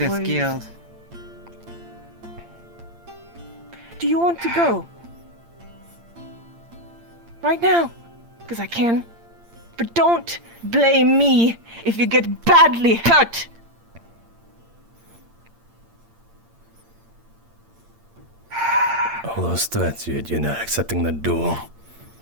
away. guild. Do you want to go? Right now? Because I can. But don't blame me if you get badly hurt. All those threats, you're not accepting the duel.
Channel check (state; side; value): late; left; 8.7 ms